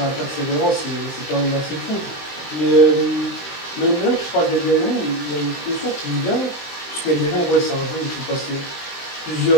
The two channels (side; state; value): right; late; 23 ms